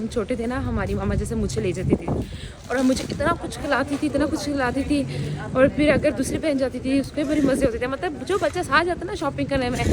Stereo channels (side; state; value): both; identical; correlation 1.00